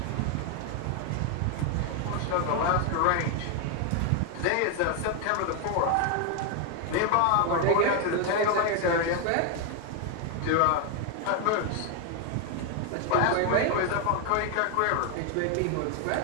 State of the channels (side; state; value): both; different; correlation 0.01